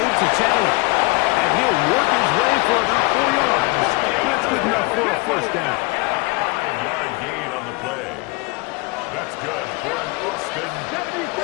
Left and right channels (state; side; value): quieter; right; 25.9 dB